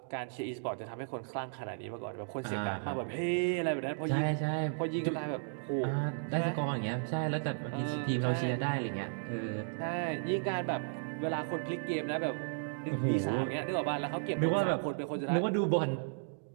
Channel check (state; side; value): silent; left; digital silence